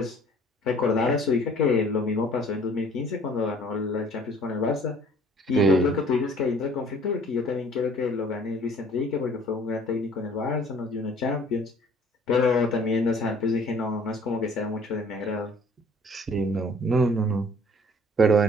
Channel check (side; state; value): both; normal; correlation 0.53